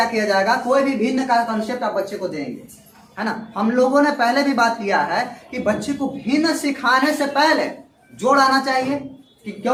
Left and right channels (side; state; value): both; identical; correlation 1.00